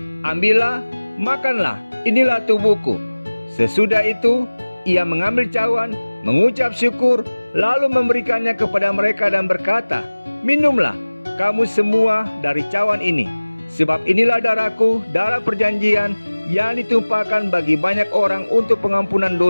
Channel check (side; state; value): both; inverted; correlation -1.00